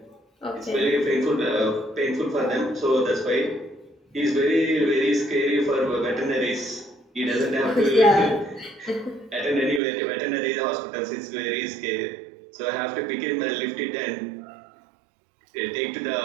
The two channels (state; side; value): drops out; left; at 9.8 s